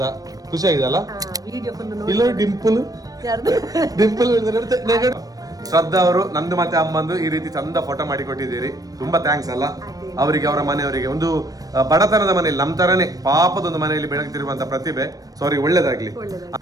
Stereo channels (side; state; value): left; late; 0.18 ms